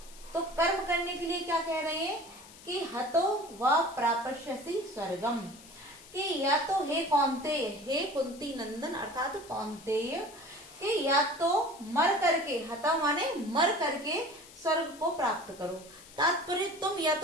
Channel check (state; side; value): noise; left; hiss, 20 dB below the sound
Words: तो कर्म करने के लिए क्या कह रहे हैं कि हतो व प्राप्स्यसि स्वर्गम, कि या तो हे कौन्तेय, हे कुंती नंदन अर्थात कौन्तेय, कि या तो मर करके, हता माने मर करके स्वर्ग को प्राप्त करो। तात्पर्य तुम या